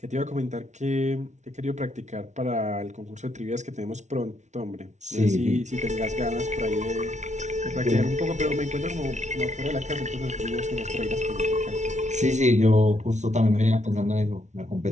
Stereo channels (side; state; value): left; late; 0.34 ms